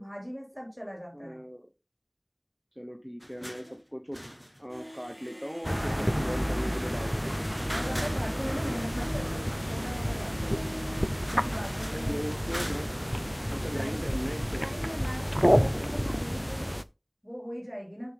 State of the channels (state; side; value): identical; both; correlation 1.00